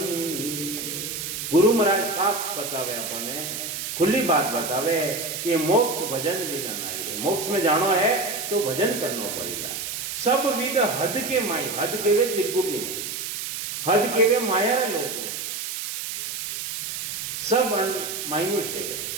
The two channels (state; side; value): noise; right; hiss, 5 dB below the sound